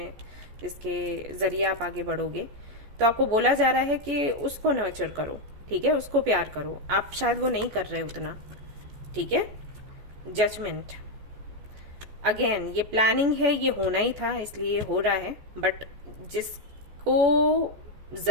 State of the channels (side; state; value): left; late; 14 ms